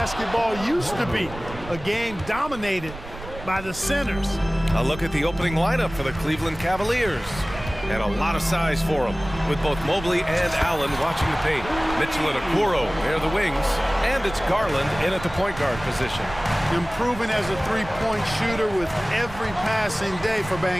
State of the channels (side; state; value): right; noise; rumble, 13 dB below the sound